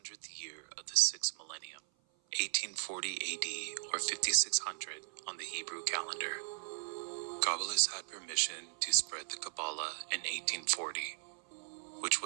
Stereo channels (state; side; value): silent; left; 53 dB below the other